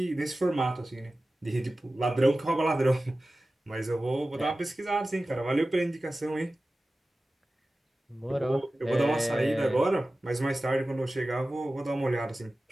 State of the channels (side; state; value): both; normal; correlation 0.96